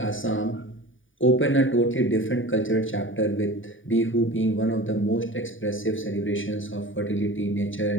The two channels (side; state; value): right; late; 0.57 ms